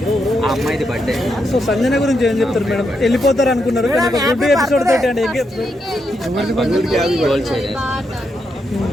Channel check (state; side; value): normal; both; correlation 0.82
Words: సో సంజన గురించి ఏం చెప్తారు మేడం? వెళ్ళిపోతారు అనుకున్నారు కానీ ఒక గుడ్ ఎపిసోడ్ తోటి అంటే